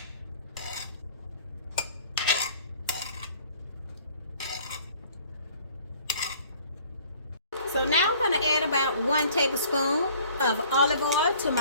So now I'm going to add about 1 tablespoon of olive oil to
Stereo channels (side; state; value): both; inverted; correlation -0.53